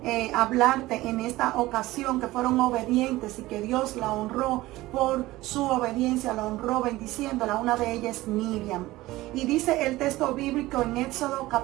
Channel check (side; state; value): left; quieter; 18.0 dB